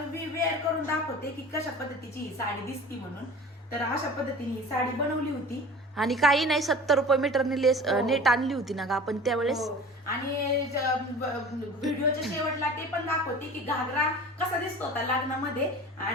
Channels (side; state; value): both; normal; correlation 0.39